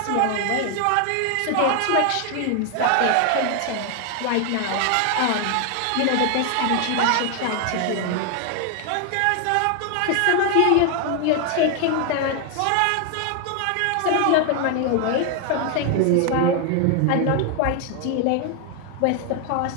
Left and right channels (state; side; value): different; both; correlation 0.00